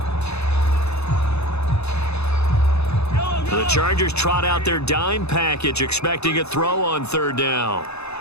The Chargers trot out their dime package, expecting a throw on third down.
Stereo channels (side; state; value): right; late; 0.80 ms